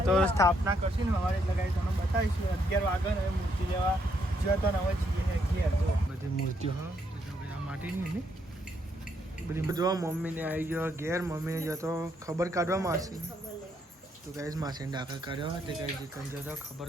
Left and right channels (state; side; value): normal; both; correlation 0.75